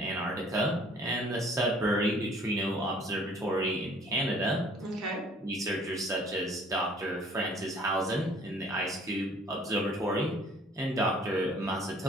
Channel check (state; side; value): normal; both; correlation 0.55